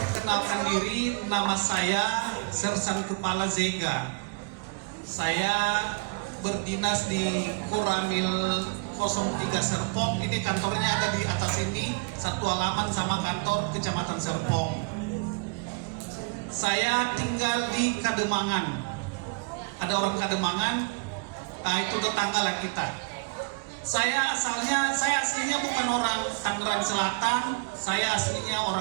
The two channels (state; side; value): quieter; left; 29.0 dB